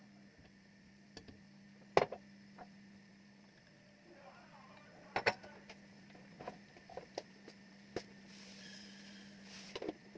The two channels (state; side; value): identical; both; correlation 1.00